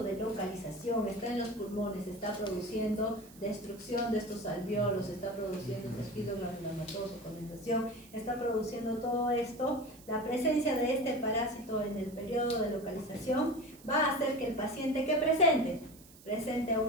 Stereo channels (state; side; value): noise; right; hiss, 22 dB below the sound